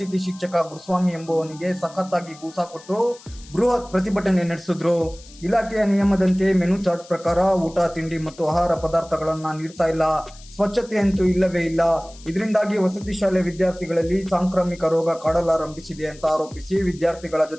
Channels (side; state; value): left; noise; hiss, 22 dB below the sound